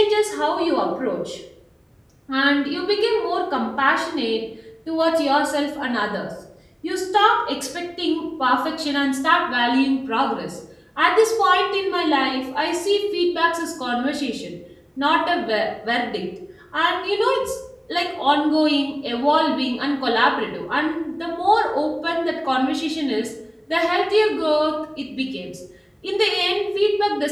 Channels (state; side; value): identical; both; correlation 1.00